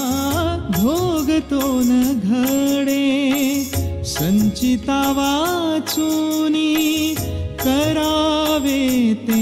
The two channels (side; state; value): both; identical; correlation 1.00